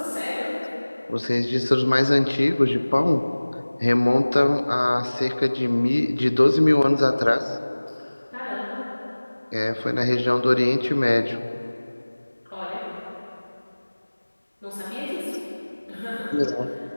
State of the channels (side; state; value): both; inverted; correlation -1.00